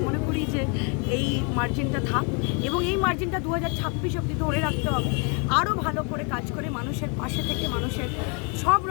মনে করি যে এই মার্জিনটা থাক এবং এই মার্জিনটা 2026 অবধি ধরে রাখতে হবে। আরও ভালো করে কাজ করে মানুষের পাশে থেকে মানুষের সব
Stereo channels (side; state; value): right; quieter; 35.5 dB